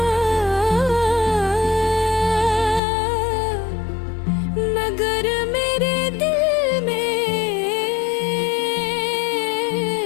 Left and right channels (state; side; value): drops out; right; at 2.8 s